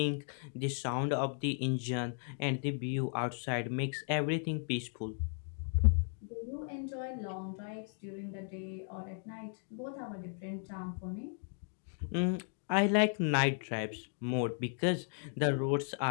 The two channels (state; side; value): silent; right; 54 dB below the other